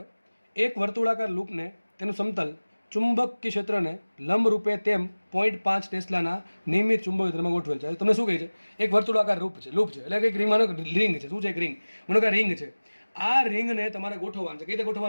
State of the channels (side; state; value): both; inverted; correlation -1.00